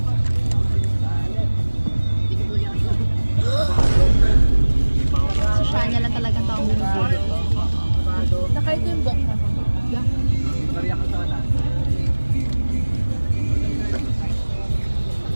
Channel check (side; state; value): both; inverted; correlation -1.00